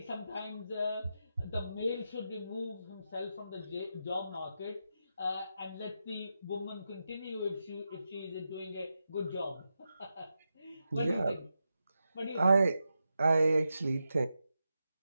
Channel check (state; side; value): inverted; both; correlation -0.88